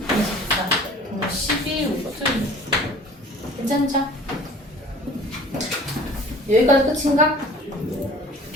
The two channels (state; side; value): normal; both; correlation 0.48